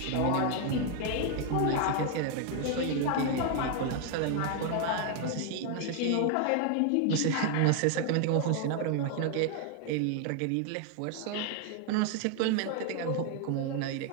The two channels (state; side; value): different; both; correlation 0.00